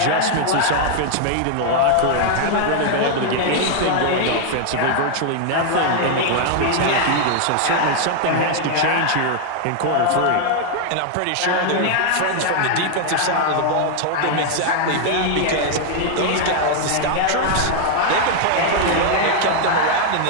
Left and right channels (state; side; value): different; both; correlation 0.00